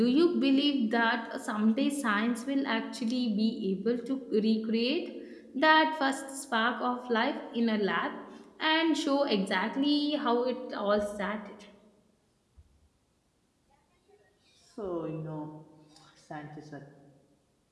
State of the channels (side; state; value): both; identical; correlation 1.00